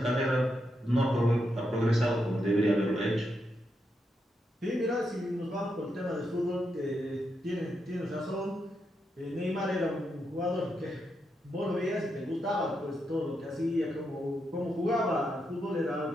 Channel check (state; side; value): normal; both; correlation 0.83